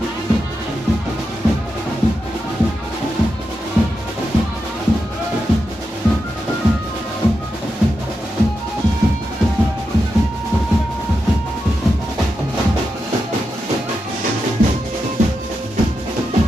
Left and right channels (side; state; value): both; normal; correlation 0.87